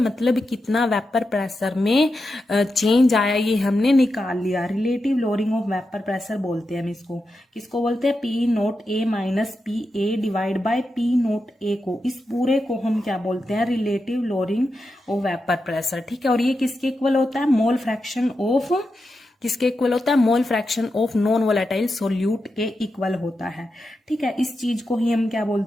कितना वेपर प्रेशर में चेंज आया ये हमने निकाल लिया। Relative lowering of vapour pressure बोलते हैं हम इसको। किसको बोलते हैं? P naught A minus P A divide by P naught A को, इस पूरे को हम क्या बोलते हैं? Relative lowering of vapour pressure. ठीक है, और ये किसके इक्वल होता है? मोल फ्रैक्शन ऑफ, किसके इक्वल होता है? Mole fraction of non volatile solute के इक्वल होता है। ठीक है, इस चीज को ही हम क्या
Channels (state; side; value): normal; both; correlation 0.88